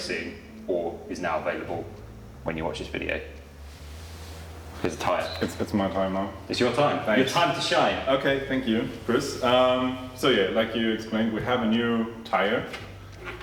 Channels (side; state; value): both; identical; correlation 1.00